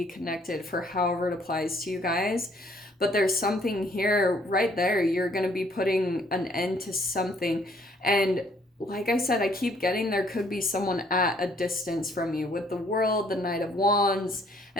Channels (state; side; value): normal; both; correlation 0.63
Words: connected for however it applies to you guys. But there's something here right there. You're going to be putting an end to something. And like I said, I keep getting there could be someone at a distance from you with the World, the Knight of Wands,